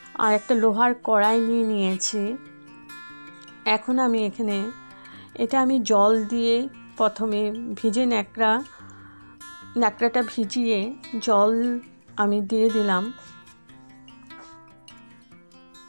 আর একটা লোহার কড়াই নিয়ে নিয়েছি। এখন আমি এখানে এটা আমি জল দিয়ে প্রথমে ভিজে ন্যাকড়াটা ভিজিয়ে জল আমি দিয়ে দিলাম।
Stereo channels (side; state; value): both; inverted; correlation -1.00